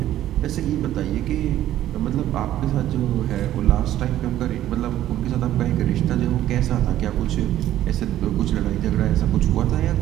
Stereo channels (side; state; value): left; quieter; 12.8 dB